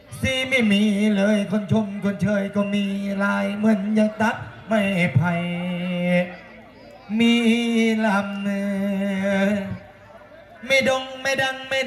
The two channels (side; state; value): both; identical; correlation 1.00